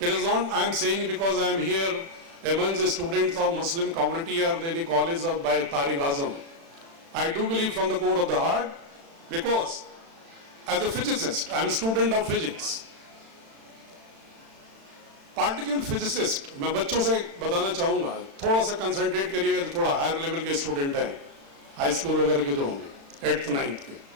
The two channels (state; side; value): late; left; 36 ms